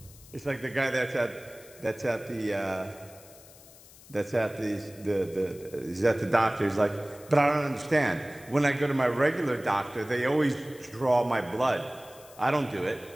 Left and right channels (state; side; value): noise; left; hiss, 22 dB below the sound